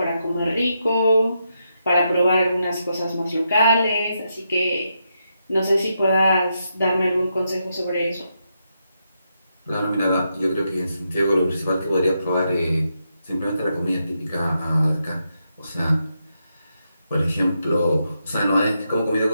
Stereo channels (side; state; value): both; inverted; correlation -0.82